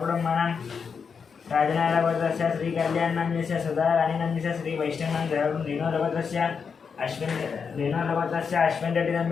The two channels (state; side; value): quieter; right; 6.0 dB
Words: राजनारायणगोत्रस्य श्रीकल्याणनाम्यस्य सदाराणीनाम्यस्य श्रीवैष्णवनं सहकुटुं रेणुगोत्रस्य अश्विन